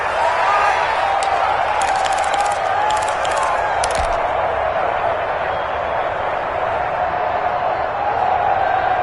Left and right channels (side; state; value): both; identical; correlation 1.00